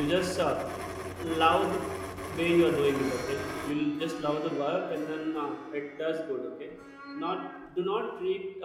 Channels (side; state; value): both; identical; correlation 1.00